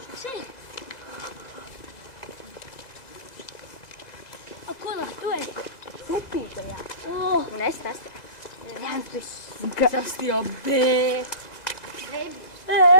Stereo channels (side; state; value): right; late; 1.9 ms